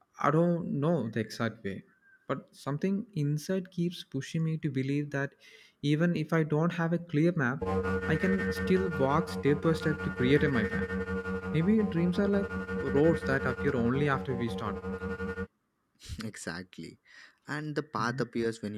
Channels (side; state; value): both; identical; correlation 1.00